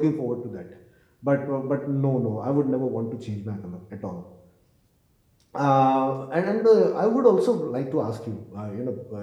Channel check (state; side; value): identical; both; correlation 1.00